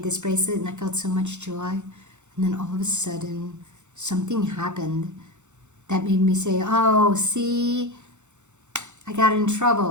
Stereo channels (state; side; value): late; left; 0.84 ms